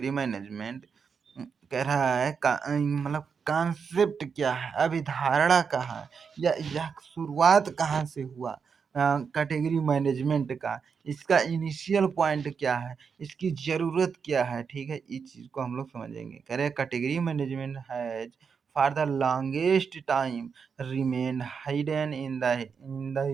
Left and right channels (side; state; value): left; quieter; 6.1 dB